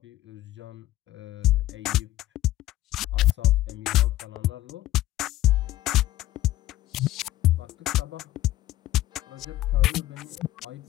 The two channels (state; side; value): quieter; right; 15.2 dB